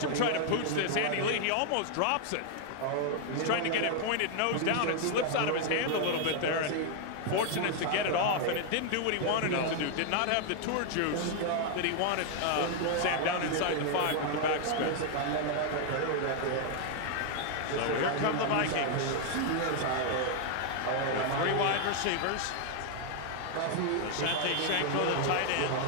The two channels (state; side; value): different; both; correlation 0.00